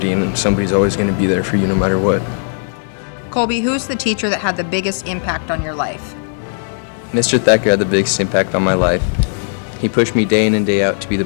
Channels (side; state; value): right; silent; 68 dB below the other